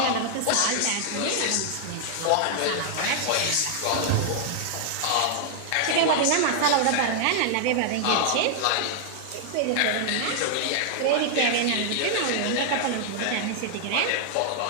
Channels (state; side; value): different; both; correlation 0.00